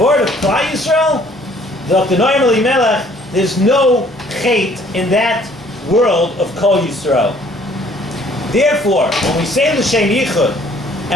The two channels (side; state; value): both; normal; correlation 0.58